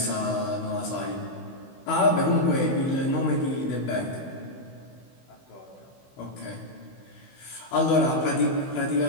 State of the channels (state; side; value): late; right; 16 ms